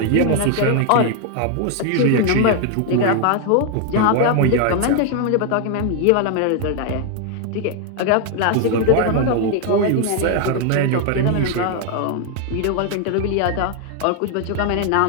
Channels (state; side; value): different; both; correlation 0.00